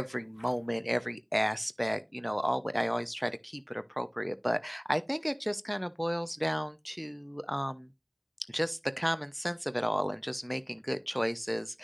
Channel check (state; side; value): identical; both; correlation 1.00